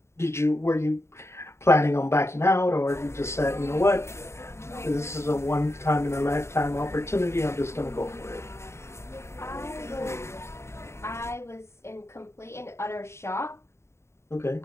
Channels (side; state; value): right; late; 0.13 ms